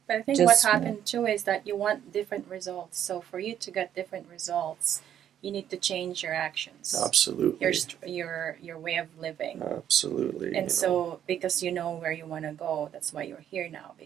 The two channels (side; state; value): left; quieter; 10.1 dB